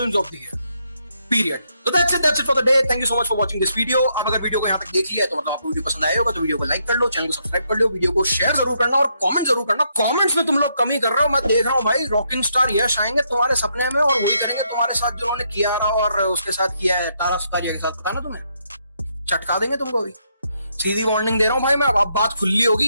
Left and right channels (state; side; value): inverted; both; correlation -0.76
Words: of the year. Period. So that's it for the day. Thank you so much for watching this video. आप अगर वीडियो को यहाँ तक देख लिया तो मतलब आपको वीडियो पसंद आया होगा तो वीडियो को लाइक कर लो, चैनल को सब्सक्राइब कर लो, वीडियो को शेयर जरूर करना और कमेंट जरूर करना। कमेंट्स में तुम लोग कमी कर रहे हो, मैं देख रहा हूँ भाई। रॉकिंग स्टार यश आएंगे तुम्हारे सपने में और वही करेंगे तुम्हारे साथ जो उन्होंने कियारा और उसके साथ किया है तारा सुतारिया के साथ। पता ना तुम्हें, चटका देंगे तुमको भी। सीधी वार्निंग दे रहा हूँ भाई मैं, अब बात खुली